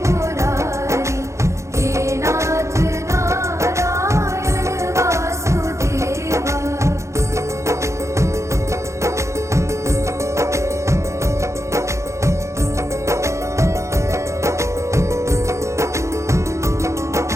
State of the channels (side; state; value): left; late; 0.14 ms